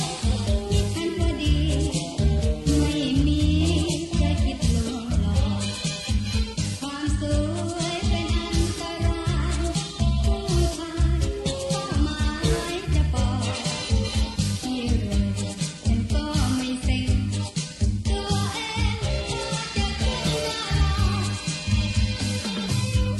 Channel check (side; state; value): both; identical; correlation 1.00